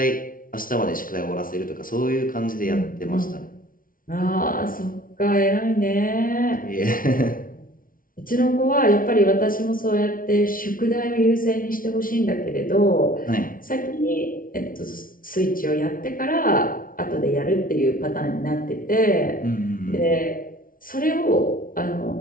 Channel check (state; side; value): late; right; 0.40 ms